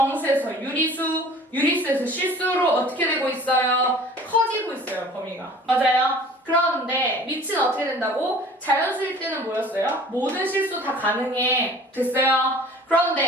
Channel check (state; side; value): normal; both; correlation 0.47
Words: 유리수, 유리수에서 실수로 어떻게 되고 있어요? 커지고 있어요, 범위가. 맞아요? 그러는데 밑은 어떻게 된다고? 자연수일 때는 뭐였어요? 모든 실수 다 가능해. 됐어요?